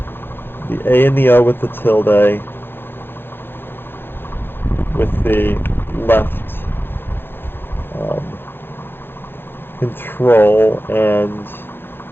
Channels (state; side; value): late; right; 0.10 ms